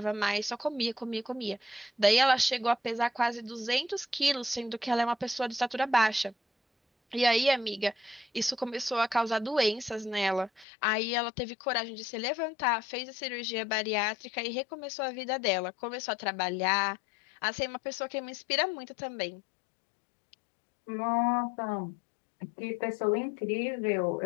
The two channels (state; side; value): drops out; right; at 10.7 s